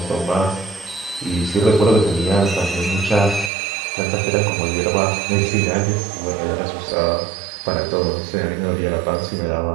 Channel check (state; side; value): drops out; left; at 3.5 s